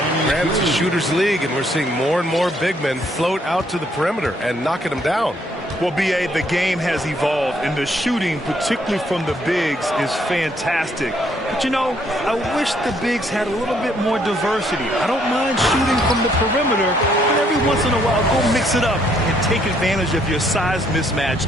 And it's a shooter's league, and we're seeing more and more big men float out to the perimeter and knocking them down. Well, B.A., the game has evolved, and the shooting, particularly from the bigs, is fantastic. But, you know, I wish the bigs had a little bit more diversity. I don't mind shooting from the perimeter, but every once in a while, go mix it up and take advantage of your size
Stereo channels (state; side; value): normal; both; correlation 0.69